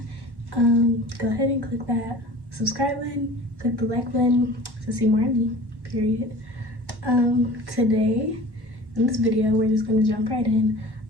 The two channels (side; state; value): left; late; 1.1 ms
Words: Go ahead and click that subscribe button, click the like button to see more of me, period. Today in this video, we're just gonna jump right in.